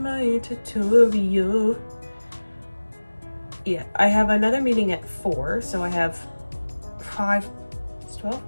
tutorial? Yeah, I have another meeting at 4, so I have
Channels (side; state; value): both; inverted; correlation -1.00